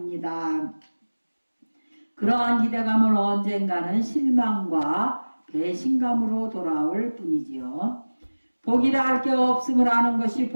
그러한 기대감을 언젠가는 실망과 배신감으로 돌아올 뿐이지요. 복이라 할 게 없음을 아는 것이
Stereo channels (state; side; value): inverted; both; correlation -1.00